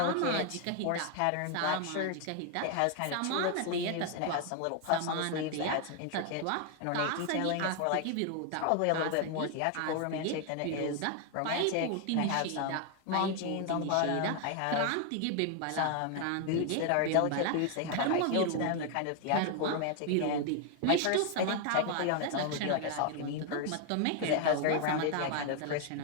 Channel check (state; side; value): different; both; correlation 0.01